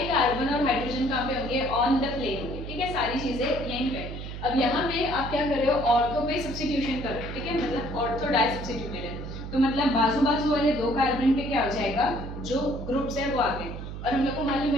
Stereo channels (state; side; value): noise; right; hum, 8 dB below the sound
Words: कार्बन और हाइड्रोजन कहाँ पे होंगे, ऑन द प्लेन होंगे, ठीक है, सारी चीजें यहीं पे। अब यहाँ पे आप क्या कर रहे हो, ऑर्थो पे सब्स्टिट्यूशन कर रहे हो, ठीक है, मतलब ऑर्थो डाई सब्स्टिट्यूटेड है, तो मतलब बाजू बाजू वाले 2 कार्बन पे क्या हो जाएगा, जो ग्रुप्स है वो आ गए। और हम लोग को मालूम